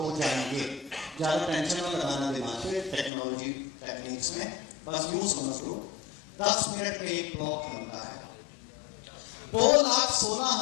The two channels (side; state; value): right; drops out; at 3.1 s